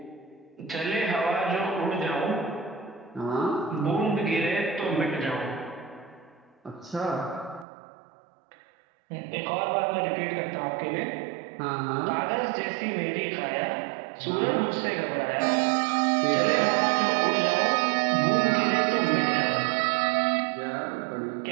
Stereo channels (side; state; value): left; drops out; at 7.7 s